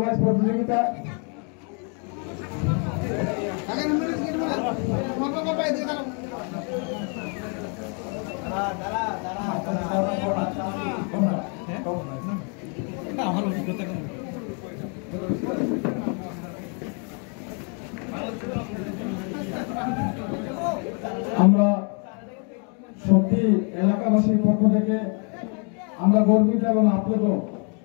প্রতিযোগিতা। আমরা সত্যি এলাকাবাসীর পক্ষ থেকে আমরা গর্বিত এবং আপ্লুত।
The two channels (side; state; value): right; quieter; 38.5 dB